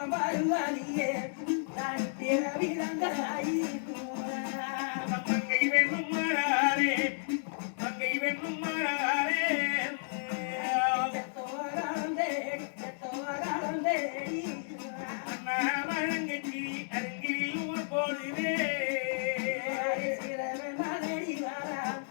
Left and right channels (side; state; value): right; silent; digital silence